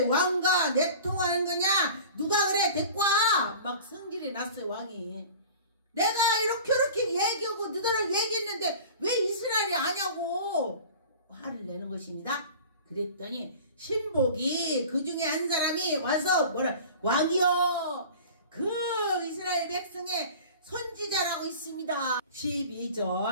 왕과 내통하는 거냐? 누가 그래? 데리고 와! 막 성질이 났어요. 왕이. 내가 이렇게 얘기하고 너희랑 얘기했는데 왜 이스라엘이 아냐고 화를 내는 것입니다. 그랬더니 신복이 그 중에 한 사람이 와서 왕이여 그 이스라엘 백성의 선지자라고 있습니다.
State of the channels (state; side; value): inverted; both; correlation -0.40